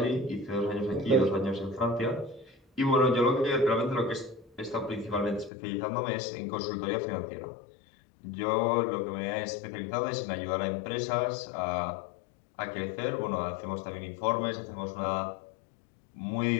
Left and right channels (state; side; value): drops out; right; at 5.5 s